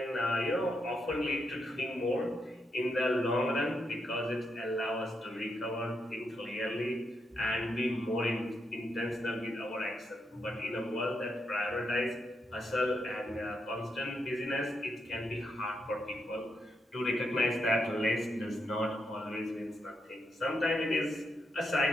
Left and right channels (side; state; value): both; normal; correlation 0.81